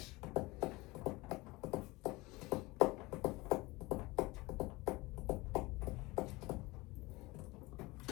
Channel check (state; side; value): quieter; right; 22.1 dB